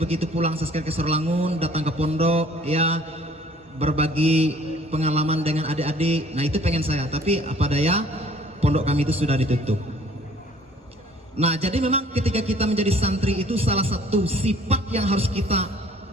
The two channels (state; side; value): normal; both; correlation 0.55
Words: pulang sekali ke Sarolangun, datang ke pondok, ya berbagi pengalaman dengan adik-adik. Nah, itu pengen saya. Tapi apa daya, pondok kami itu sudah ditutup. Nah, jadi memang ketika kita menjadi santri itu salah satu sifat yang harus kita